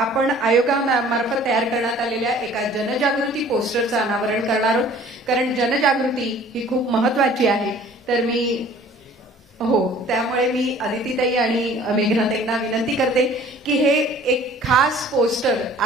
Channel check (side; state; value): both; normal; correlation 0.51